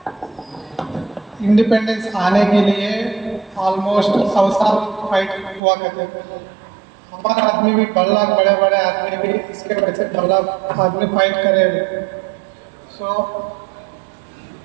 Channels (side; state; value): left; drops out; at 5.6 s